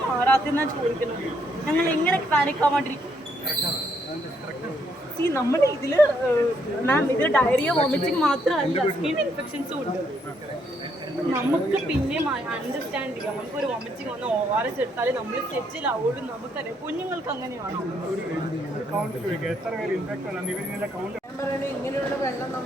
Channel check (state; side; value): normal; both; correlation 0.73